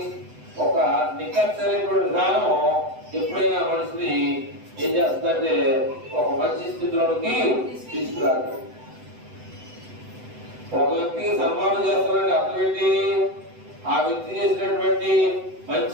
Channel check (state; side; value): late; left; 7.9 ms